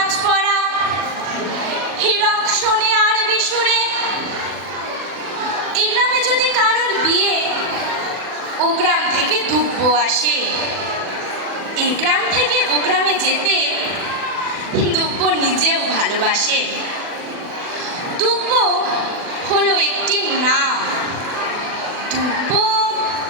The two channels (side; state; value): left; late; 40 ms